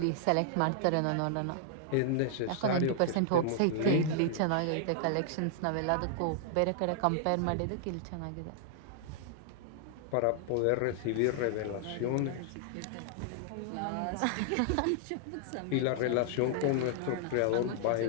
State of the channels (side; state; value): both; different; correlation -0.01